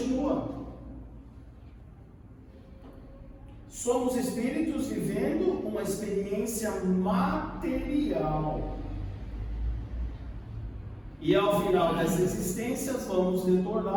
Somos espíritos vivendo uma experiência material. E ao final dessa existência vamos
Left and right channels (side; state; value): both; identical; correlation 1.00